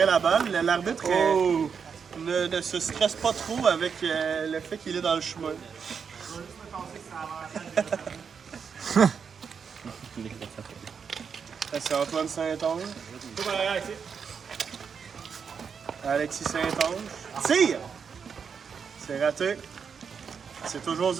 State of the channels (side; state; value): left; quieter; 6.4 dB